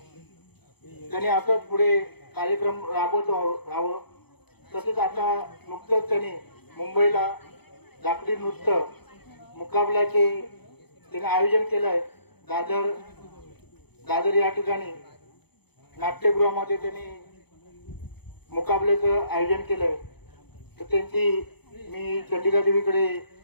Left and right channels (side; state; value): right; late; 0.98 ms